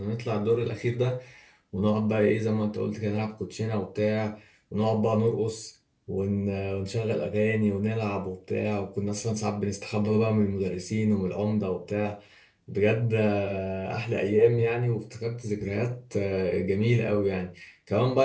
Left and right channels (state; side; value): identical; both; correlation 1.00